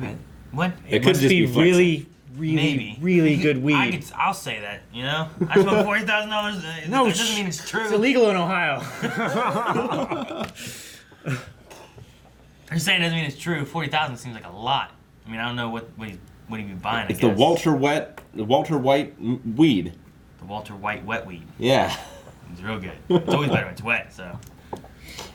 be, what? It could must just be be flexing. really, Maybe. really good weed. I'll say that. You know, I smoke $40,000. No, that doesn't mean it's true. It's illegal in Ohio. I'm saying it doesn't mean it's true. 40,000 seems like a lot. I mean, I don't know what he'd be buying. It's the Walter White weed. The Walter White wet weed. Yeah. It's real good. It's always better when it's wet. So,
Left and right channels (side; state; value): both; identical; correlation 1.00